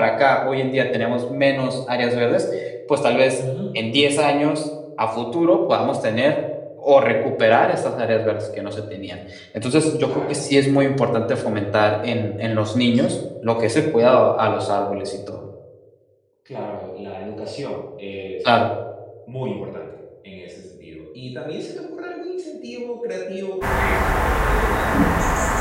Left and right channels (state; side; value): identical; both; correlation 1.00